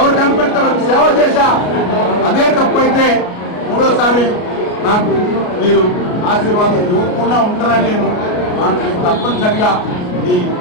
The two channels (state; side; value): late; right; 33 ms